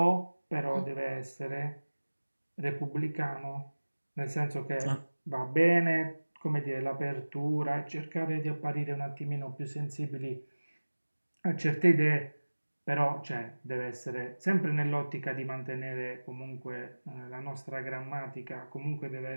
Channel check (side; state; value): both; inverted; correlation -1.00